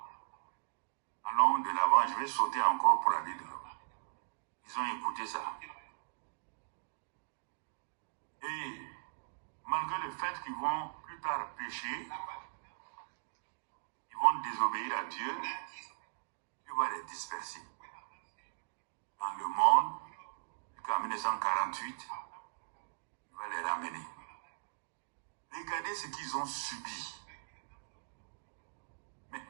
Allons de l'avant, je vais sauter encore pour aller de l'avant. Ils ont écouté ça. Et malgré le fait qu'ils vont plus tard pécher, ils vont désobéir à Dieu, Dieu va les disperser. Dans le monde, jusqu'en 1948, il va les ramener. Regardez ce qu'ils ont subi.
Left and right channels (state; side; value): silent; left; digital silence